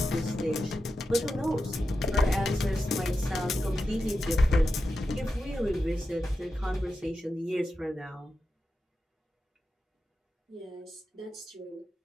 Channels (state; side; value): normal; both; correlation 0.90